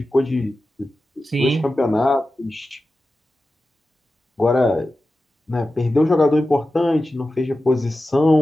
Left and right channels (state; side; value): normal; both; correlation 0.93